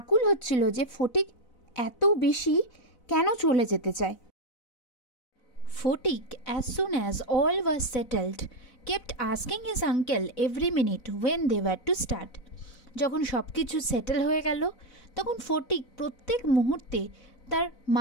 হচ্ছিল যে ফটিক এত বেশি কেন চলে যেতে চায়। Fotik, as soon as all was settled, kept asking his uncle every minute when they were to start. যখন সব কিছু সেটেল হয়ে গেল তখন ফটিক প্রত্যেক মুহূর্তে তার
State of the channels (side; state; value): right; late; 4.0 ms